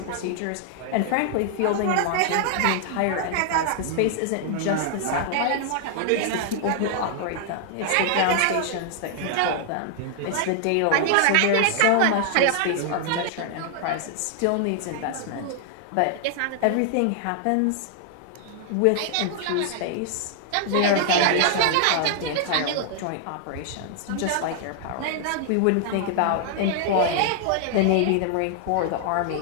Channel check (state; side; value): different; both; correlation 0.00